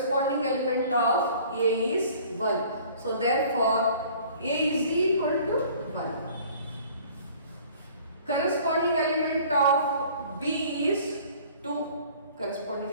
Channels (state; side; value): inverted; both; correlation -0.51